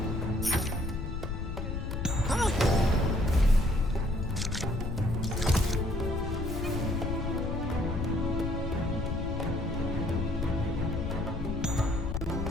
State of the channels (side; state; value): left; noise; rumble, 3 dB below the sound